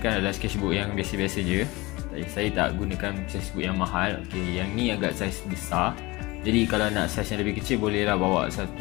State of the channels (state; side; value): quieter; right; 22.3 dB